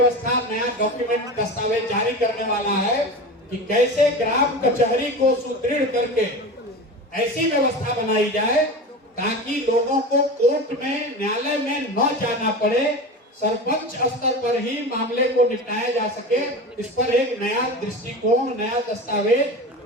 नया डॉक्यूमेंट, दस्तावेज जारी करने वाला है कि कैसे ग्राम कचहरी को सुदृढ़ करके ऐसी व्यवस्था बनाई जाए ताकि लोगों को कोर्ट में, न्यायालय में न जाना पड़े, सरपंच स्तर पर ही मामले को निपटाया जा सके। इस पर एक नया दृष्टिकोण, नया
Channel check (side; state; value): both; normal; correlation 0.29